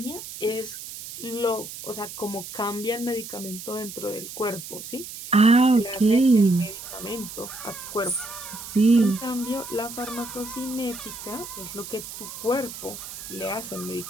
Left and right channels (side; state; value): right; noise; hiss, 11 dB below the sound